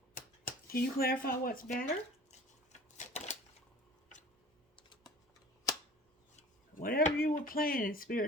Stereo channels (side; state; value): both; normal; correlation 0.44